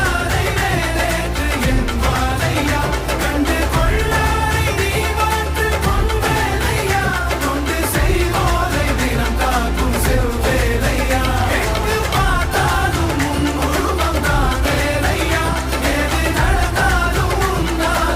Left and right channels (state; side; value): identical; both; correlation 1.00